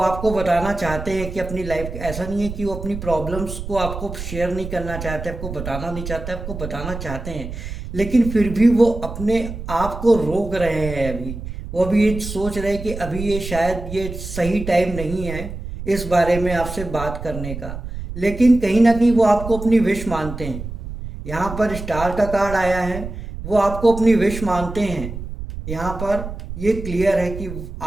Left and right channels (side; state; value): right; noise; rumble, 9 dB below the sound